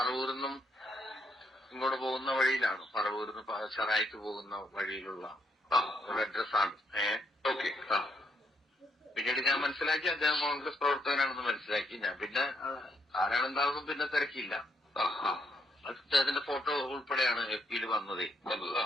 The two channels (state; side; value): normal; both; correlation 0.74